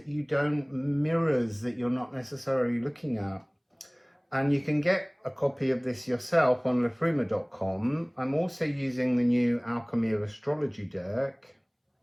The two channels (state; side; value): identical; both; correlation 1.00